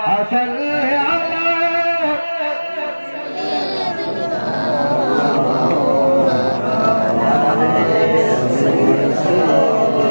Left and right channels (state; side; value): inverted; both; correlation -1.00